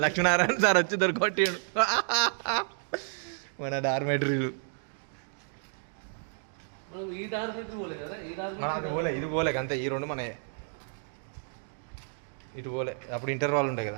లక్ష్మీనారాయణ సార్ వచ్చి దొరికొట్టాడు. మన డార్మెటరీలు. అది పోలే, ఇది పోలే అంతే. ఈ రెండు మన ఇటు పోలే. అప్పుడు ఇంటర్వాల్ ఉంటాయి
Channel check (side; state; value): left; silent; 57 dB below the other